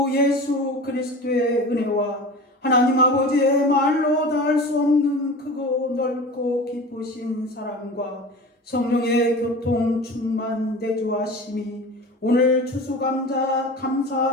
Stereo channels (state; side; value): normal; both; correlation 0.35